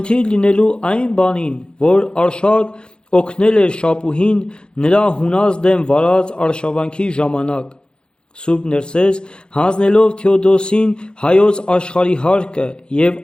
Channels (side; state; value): right; late; 0.050 ms